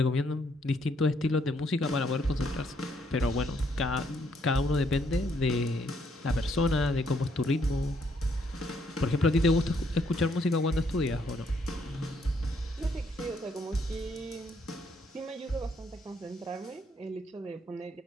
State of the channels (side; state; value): both; normal; correlation 0.71